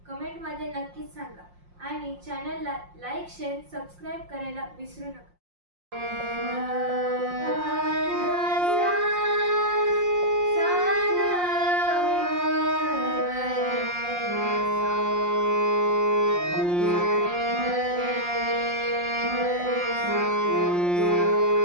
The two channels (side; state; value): left; late; 5.6 ms